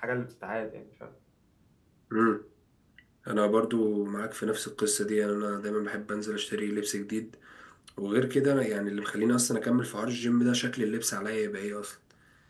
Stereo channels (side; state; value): both; identical; correlation 1.00